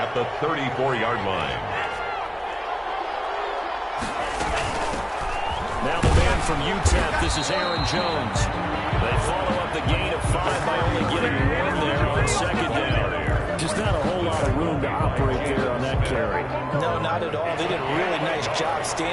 the 34-yard line. Now the man from UTEP, this is Aaron Jones. They follow up the gain of 5 by only getting 1 there on 2nd down. Just not a whole lot of room to operate there on that carry. No, not at all. They did a really nice job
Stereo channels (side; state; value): both; identical; correlation 1.00